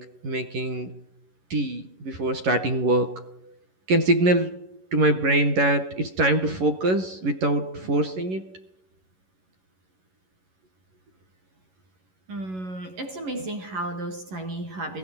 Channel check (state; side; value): late; left; 11 ms